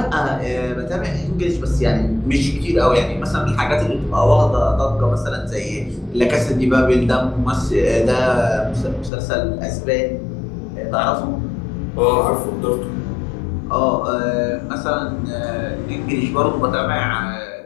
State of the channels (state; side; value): drops out; right; at 9.1 s